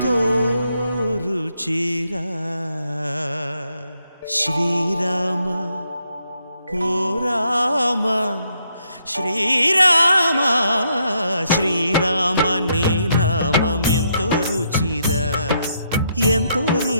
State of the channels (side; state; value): both; inverted; correlation -0.76